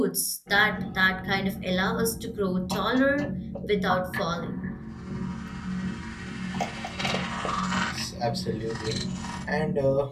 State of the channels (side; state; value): both; identical; correlation 1.00